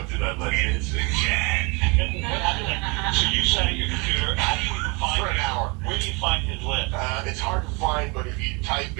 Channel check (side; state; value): left; quieter; 29.2 dB